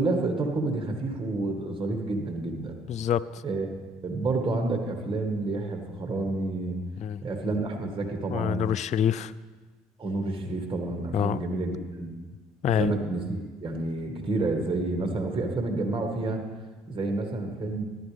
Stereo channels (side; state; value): both; normal; correlation 0.63